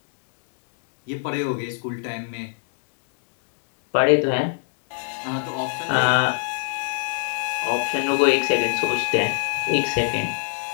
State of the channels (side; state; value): right; silent; digital silence